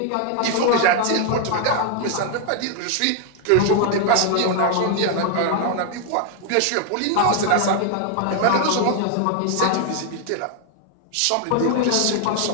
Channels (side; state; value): both; different; correlation 0.00